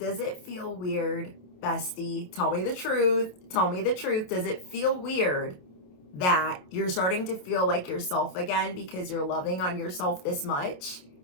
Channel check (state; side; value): late; right; 28 ms